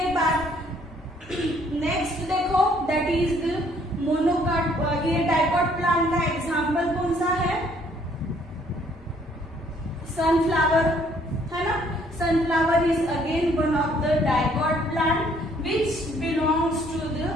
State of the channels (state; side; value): normal; both; correlation 0.63